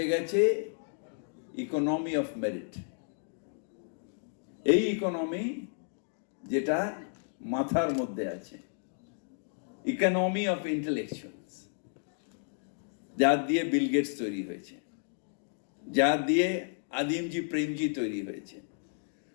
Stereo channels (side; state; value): right; silent; digital silence